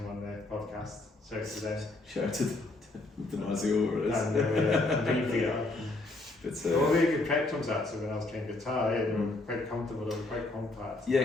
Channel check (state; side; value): quieter; right; 3.0 dB